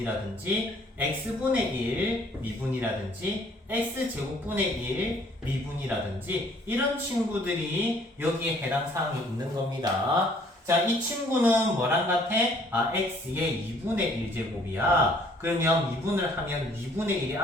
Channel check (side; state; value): both; normal; correlation 0.60